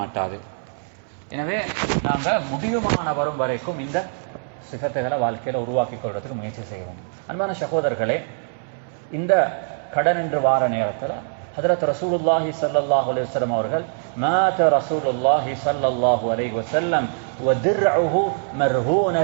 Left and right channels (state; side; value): silent; left; 64 dB below the other